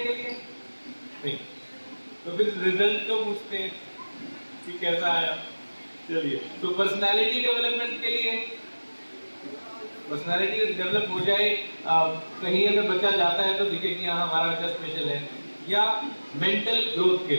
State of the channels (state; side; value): inverted; both; correlation -1.00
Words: लिए नहीं, तो फिर रिजल्ट तो पूछते हैं कि कैसा आया। चलिए, तो पर्सनालिटी डेवलपमेंट के लिए, पर्सनालिटी डेवलप हो जाए, कहीं अगर बच्चा जाता है तो दिखे कि हाँ हमारा बच्चा स्पेशल है, या मेंटल ग्रोथ के